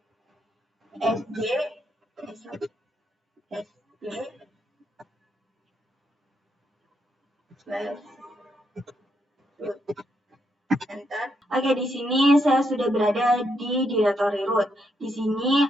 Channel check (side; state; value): both; normal; correlation 0.79